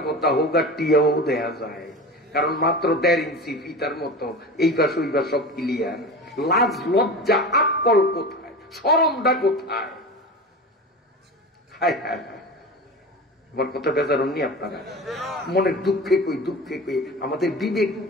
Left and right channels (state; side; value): normal; both; correlation 0.31